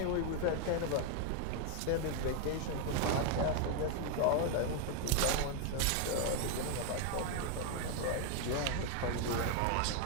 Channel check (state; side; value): different; both; correlation 0.01